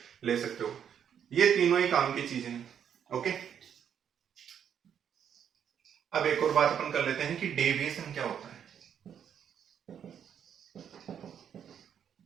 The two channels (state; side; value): quieter; left; 8.6 dB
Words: ले सकते हो। ये तीनों ही काम की चीजें हैं। ओके, अब एक और बात अपन कर लेते हैं कि डेविएशन क्या होता है।